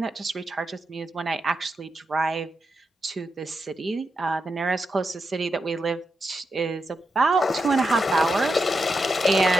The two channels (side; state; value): both; normal; correlation 0.86